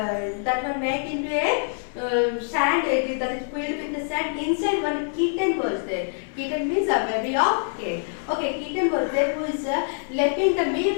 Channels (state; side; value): silent; right; digital silence